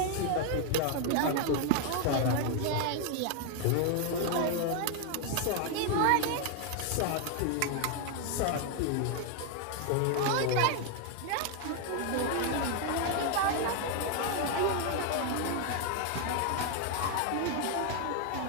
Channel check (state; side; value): different; both; correlation 0.00